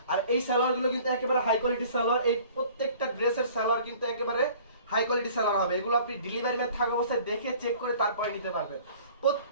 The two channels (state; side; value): inverted; both; correlation -0.50